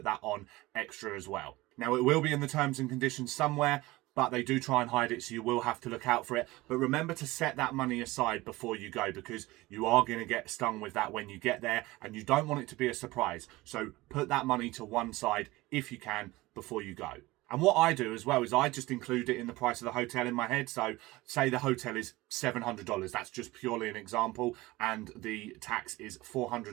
that on extra as well. Now, it will be in the terms and conditions somewhere, but they do try and hide it, so you will have to look out for it. But remember to set that money aside before you go, because you are going to get stung with that when you get there, and you don't want it to be a surprise. So put that money to one side if you can before you go. And what I do as well is I just include it in the price of the hotel in my head. So say the hotel is $700. That's just purely an example. And the tax is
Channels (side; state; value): left; quieter; 19.8 dB